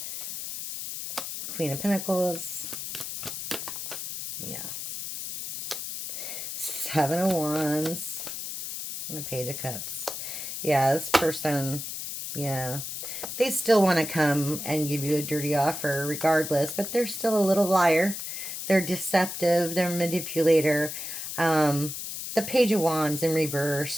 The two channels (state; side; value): noise; left; hiss, 6 dB below the sound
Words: Queen of Pentacles. Yeah. Seven of Wands. And a Page of Cups. Yeah, this person, yeah. They still want to come and give you a dirty offer regardless, but they're still a little liar. They're deceptive. They're a manipulator. The Page of Wands in